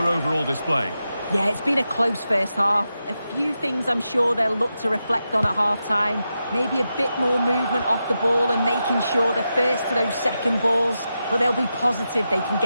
overall display? Yeah, it's been a close first half. A few things I'm sure they'll look to reflect on at half-time. Maybe a bit more movement off the ball and making sure they're first to those second balls. But they'll be positive they can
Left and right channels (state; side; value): inverted; both; correlation -0.88